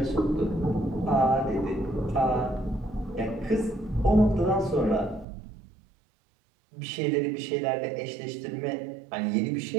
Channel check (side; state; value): left; drops out; at 5.2 s